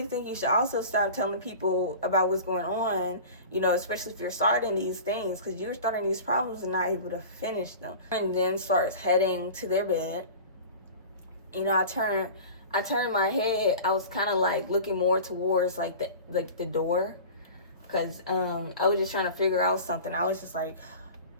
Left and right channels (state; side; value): inverted; both; correlation -0.37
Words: think you should also stop telling people about what's going on, you know, especially if you're starting these things, because you're starting these problems and not able to finish them. And then starts heading to their bed. You know, I turned my head. I was kind of like looking more towards like the door, because I was just trying to figure out something. I was just like